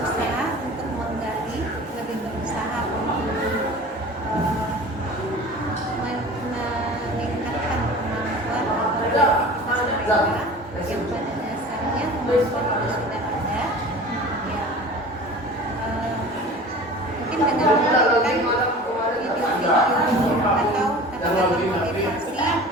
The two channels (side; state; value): both; normal; correlation 0.40